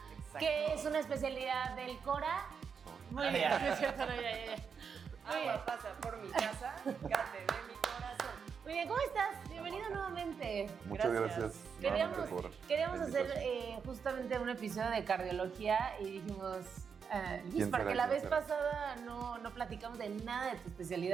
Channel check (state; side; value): quieter; left; 6.4 dB